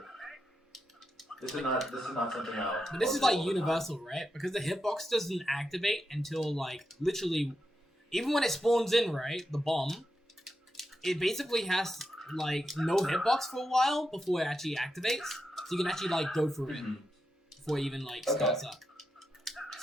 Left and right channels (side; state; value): both; normal; correlation 0.86